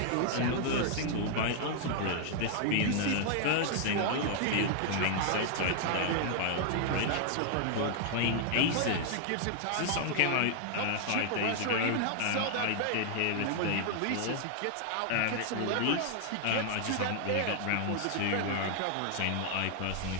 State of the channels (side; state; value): both; different; correlation 0.00